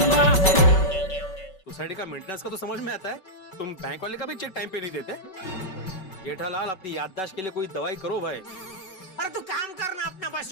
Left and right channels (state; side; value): late; right; 5.3 ms